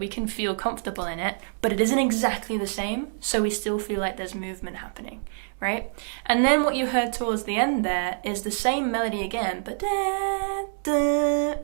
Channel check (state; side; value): silent; left; digital silence